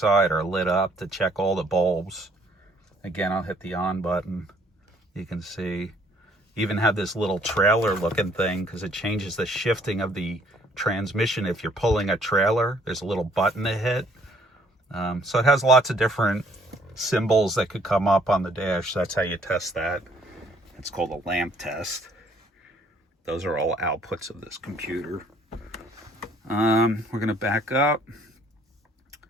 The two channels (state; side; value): normal; both; correlation 0.62